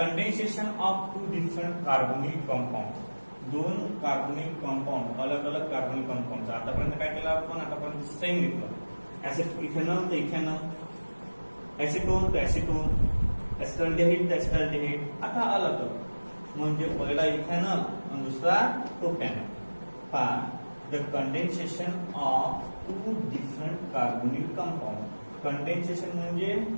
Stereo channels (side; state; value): both; inverted; correlation -1.00